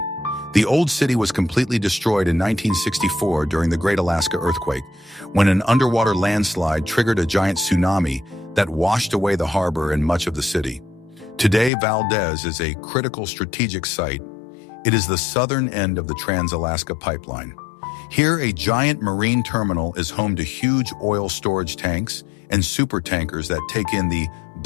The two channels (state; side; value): drops out; right; at 11.7 s